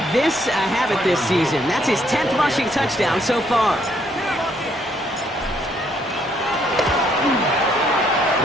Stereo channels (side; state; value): both; normal; correlation 0.70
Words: this a habit this season. That's his 10th rushing touchdown so far.